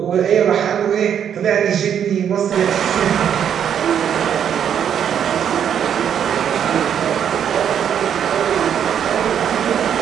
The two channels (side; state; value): left; quieter; 8.7 dB